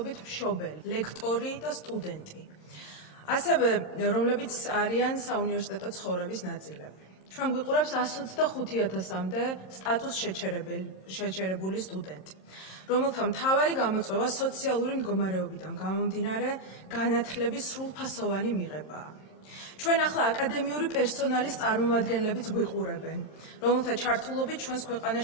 მშობელი, ლექტორი და სტუდენტი. ასევე, რომლებიც არიან საუნივერსიტეტო ცხოვრების ნაწილები. ჩვენ გვიყურებს 125,000-მდე სტატუს შეჩერებული სტუდენტი, რომელთა მთავარი გამოწვევა სოციალური მდგომარეობიდან გამომდინარე განათლების სრულფასოვანი მიღებაა. ჩვენ ახლა აკადემიური პერსონალის წარმომადგენლებიც გვიყურებენ, რომელთა ჩართულობით ჩვენს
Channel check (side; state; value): right; late; 27 ms